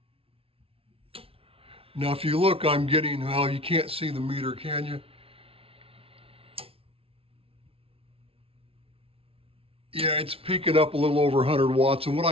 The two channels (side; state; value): left; late; 0.27 ms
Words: Now, if you look, I'm getting, well, you can't see the meter, can you? Yeah, it's peaking up a little over 100 watts. And what